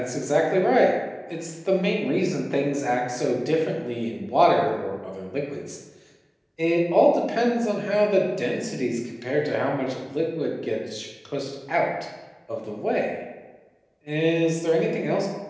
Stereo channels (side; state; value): both; identical; correlation 1.00